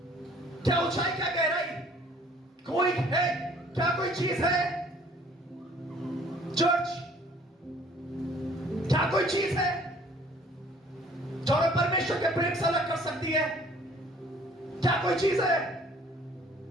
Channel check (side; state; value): both; normal; correlation 0.56